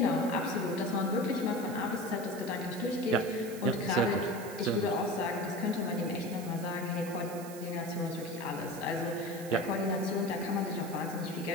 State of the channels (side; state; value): right; noise; hiss, 15 dB below the sound